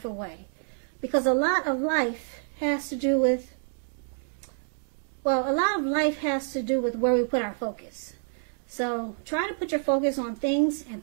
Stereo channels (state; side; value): silent; left; 59 dB below the other